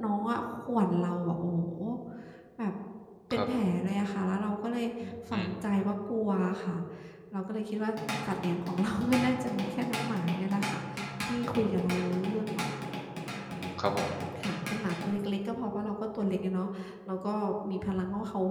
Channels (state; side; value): identical; both; correlation 1.00